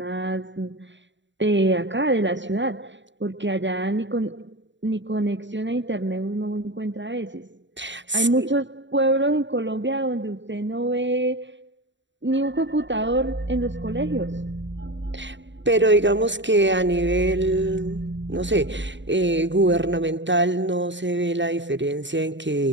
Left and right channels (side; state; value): left; late; 0.53 ms